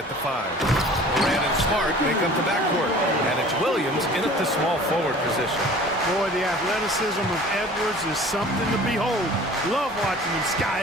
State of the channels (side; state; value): both; normal; correlation 0.46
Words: the 5. Moran and Smart make up the backcourt, and it's Williams in at the small forward position. Boy, the athleticism of Edwards is something to behold. Love watching him